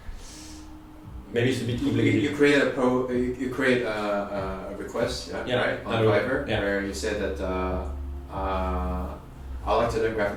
Maybe it's a bit complicated. You create a request, right, on Fiverr, where you said that I like to learn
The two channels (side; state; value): both; identical; correlation 1.00